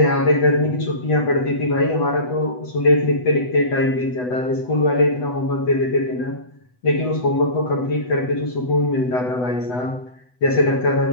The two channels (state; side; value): late; right; 8.0 ms